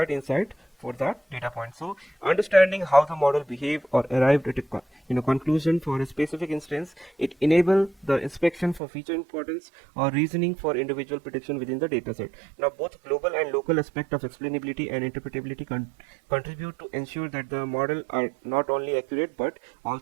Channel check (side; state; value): left; drops out; at 8.8 s